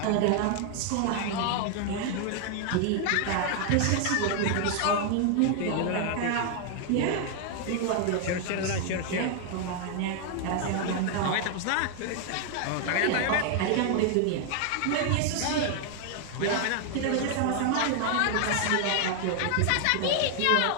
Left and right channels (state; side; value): different; both; correlation 0.00